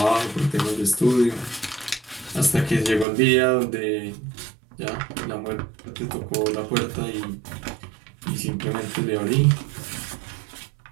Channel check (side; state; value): left; drops out; at 3.1 s